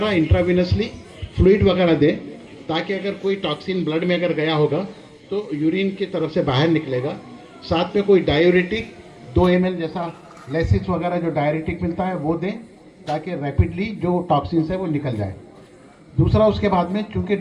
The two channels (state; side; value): identical; both; correlation 1.00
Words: इंट्राविनसली फ्लूइड वगैरह दें, ताकि अगर कोई टॉक्सिन ब्लड में अगर गया होगा तो यूरिन की तरफ से बाहर निकलेगा। साथ में कोई डायूरेटिक 2 ml जैसा लेसिस वगैरह जो डायूरेटिक मिलता है वो दें, ताकि रैपिडली जो टॉक्सिन्स है वो निकल जाए। दूसरा, उसके बाद में चूंकि